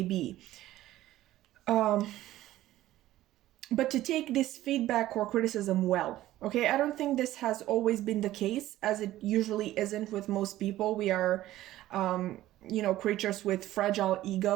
be. But to take this feedback or criticism well. Okay, I don't think this has always been the case, as it usually isn't with most people. We are, creatures with fragile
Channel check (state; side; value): quieter; left; 14.8 dB